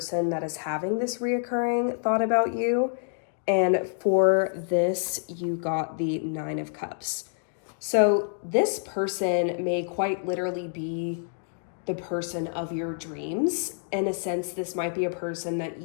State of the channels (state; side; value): silent; right; digital silence